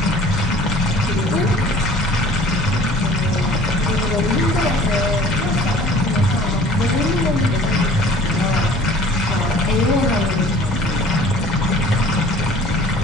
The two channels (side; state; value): both; normal; correlation 0.48